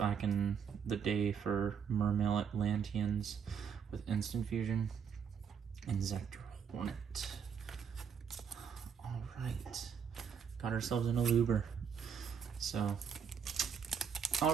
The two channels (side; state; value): left; quieter; 7.2 dB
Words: in the day for Mermail Atlanteans with Instant Fusion. Inzector Hornet. Alright. Got ourselves an Aluber. So,